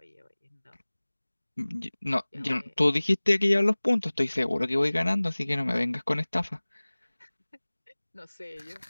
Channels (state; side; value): inverted; both; correlation -1.00